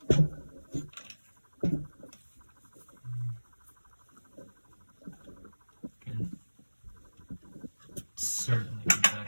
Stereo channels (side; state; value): both; inverted; correlation -1.00